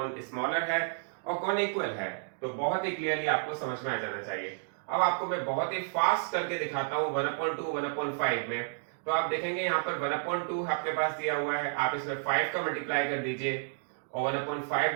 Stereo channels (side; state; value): left; silent; digital silence